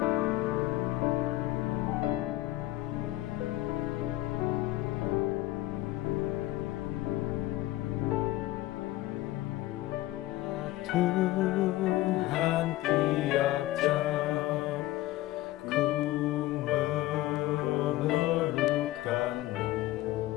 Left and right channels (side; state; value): right; quieter; 16.6 dB